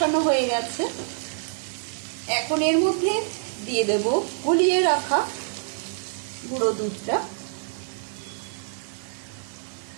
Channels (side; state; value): left; silent; digital silence